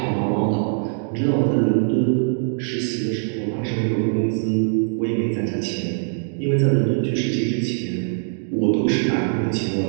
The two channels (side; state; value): left; silent; digital silence